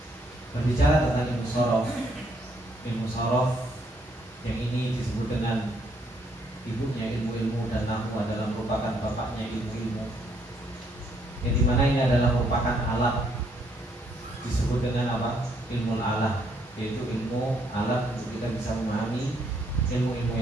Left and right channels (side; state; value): both; normal; correlation 0.70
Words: Berbicara tentang ilmu sorof yang ini disebut dengan ibunya ilmu-ilmu, dan nahwu adalah merupakan bapaknya ilmu-ilmu, yang dimana ini adalah merupakan alat, disebut dengan apa? Ilmu alah, yaitu ilmu alat untuk kita bisa memahami ilmu-ilmu